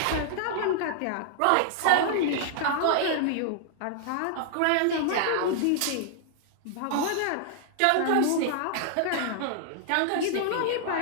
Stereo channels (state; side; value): different; both; correlation -0.01